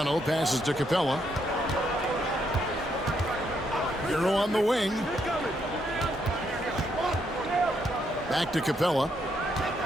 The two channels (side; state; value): both; normal; correlation 0.76